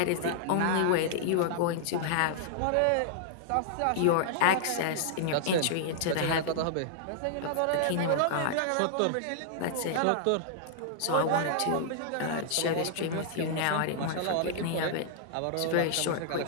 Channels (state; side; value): different; both; correlation -0.01